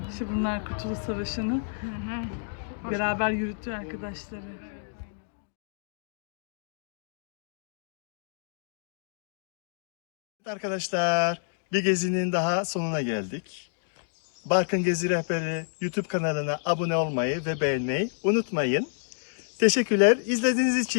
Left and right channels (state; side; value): silent; right; digital silence